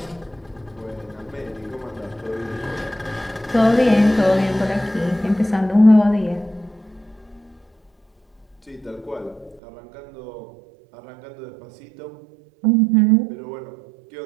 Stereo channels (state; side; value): drops out; left; at 9.6 s